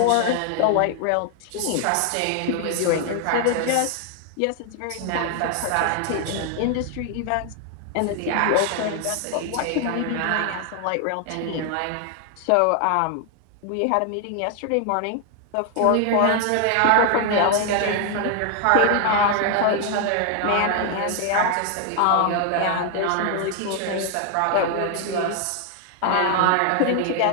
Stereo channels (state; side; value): different; both; correlation 0.00